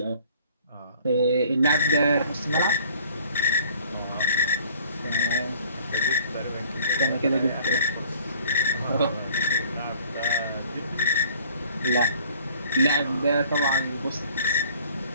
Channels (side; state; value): both; inverted; correlation -0.54